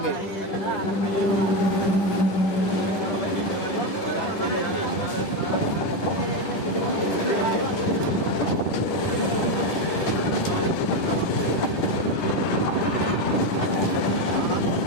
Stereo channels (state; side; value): late; right; 10 ms